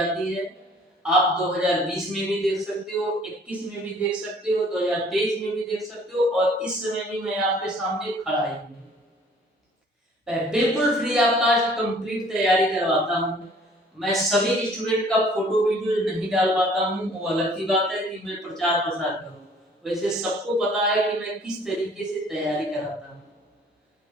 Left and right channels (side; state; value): both; normal; correlation 0.55